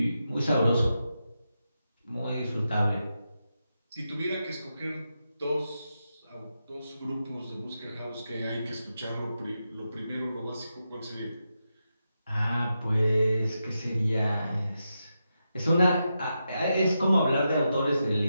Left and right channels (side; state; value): both; inverted; correlation -0.87